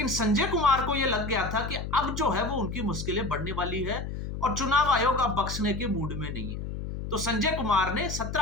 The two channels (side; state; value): left; noise; hum, 6 dB below the sound